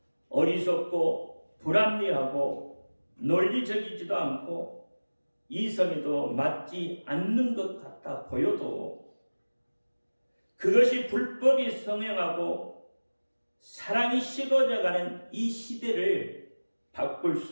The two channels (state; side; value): inverted; both; correlation -1.00